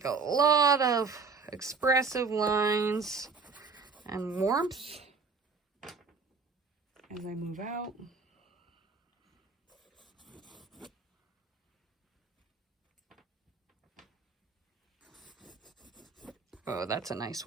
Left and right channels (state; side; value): quieter; left; 4.9 dB